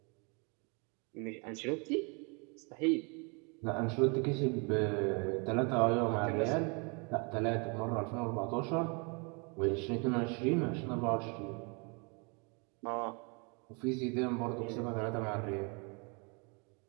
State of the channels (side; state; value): left; quieter; 33.3 dB